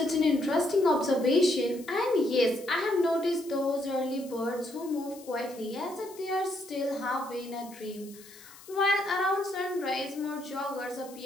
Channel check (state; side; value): noise; left; hiss, 20 dB below the sound